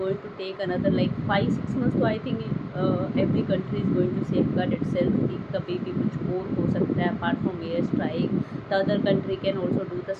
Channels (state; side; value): identical; both; correlation 1.00